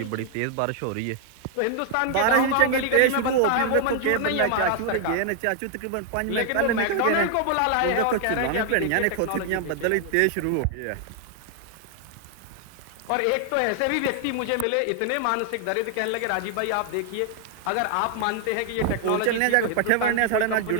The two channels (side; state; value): both; different; correlation 0.00